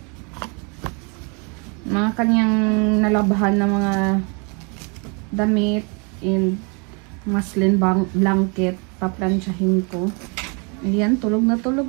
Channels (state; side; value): quieter; left; 33.7 dB